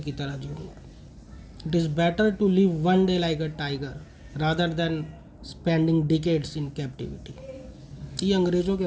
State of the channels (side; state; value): both; identical; correlation 1.00